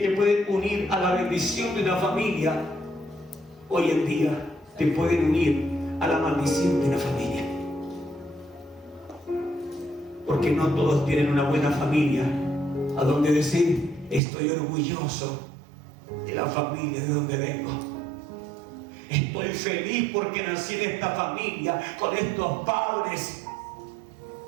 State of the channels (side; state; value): left; drops out; at 14.2 s